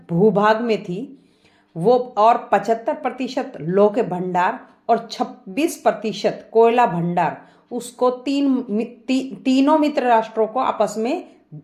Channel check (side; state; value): both; identical; correlation 1.00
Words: भूभाग में थी वो, और 75% लौह के भंडार और 26% कोयला भंडार, उसको तीनों मित्र राष्ट्रों को आपस में